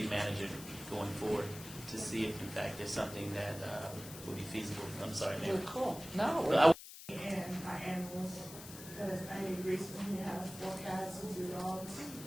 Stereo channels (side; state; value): left; noise; hiss, 13 dB below the sound